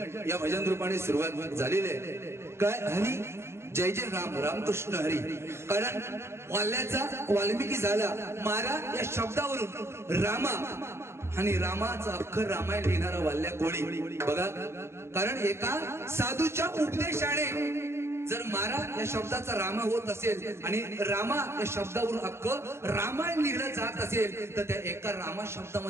या भजन रूपाने सुरुवात झालेली आहे. काय हरी जय जय राम रामकृष्ण हरी. कारण वाल्याचा वाल्मिकी झाला मारा या शब्दावरून रामा आणि रामाचा अख्खर रामायण लिहिणारा वाल्या कोळी बघा. कारण एका साधूच्या उपदेशाने जर मारा या शब्दाचा रामा होत असेल आणि रामा या शब्दावरून अख्ख रामायण लिहिलं जात असेल तर त्या एका रामा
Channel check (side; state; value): left; late; 0.13 ms